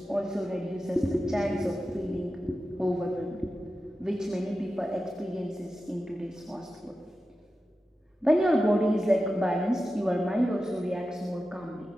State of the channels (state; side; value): normal; both; correlation 0.92